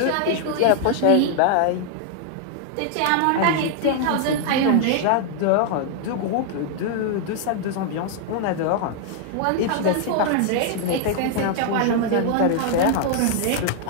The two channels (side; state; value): both; different; correlation 0.00